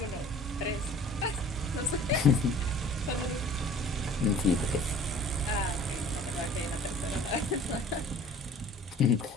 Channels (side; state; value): both; normal; correlation 0.48